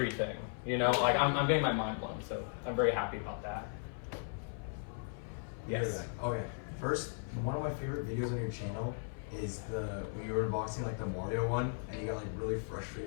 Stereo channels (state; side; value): silent; right; 53 dB below the other